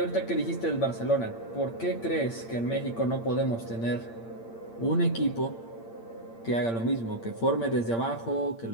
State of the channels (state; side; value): late; right; 8.7 ms